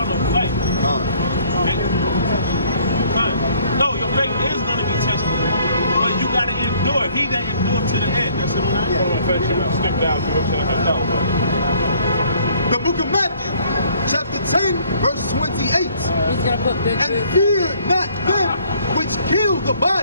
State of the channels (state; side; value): inverted; both; correlation -0.60